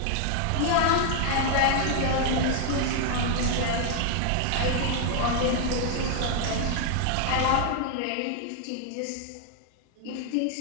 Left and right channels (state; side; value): different; both; correlation 0.00